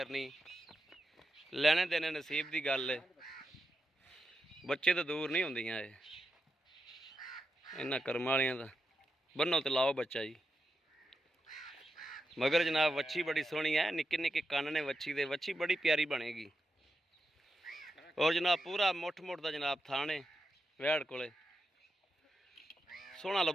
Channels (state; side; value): normal; both; correlation 0.87